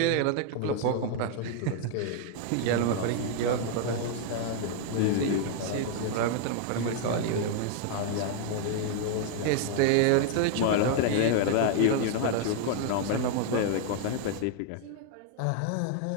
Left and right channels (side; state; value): both; different; correlation 0.00